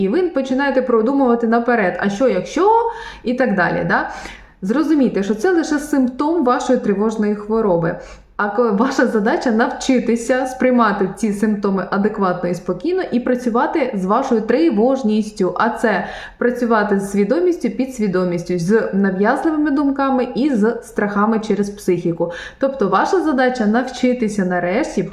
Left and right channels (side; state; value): both; identical; correlation 1.00